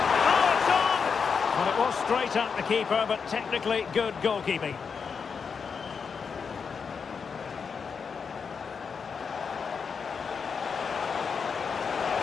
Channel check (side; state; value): right; quieter; 5.9 dB